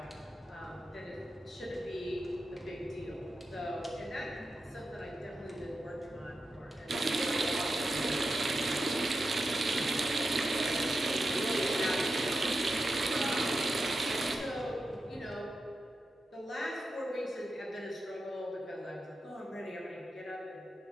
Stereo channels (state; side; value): normal; both; correlation 0.90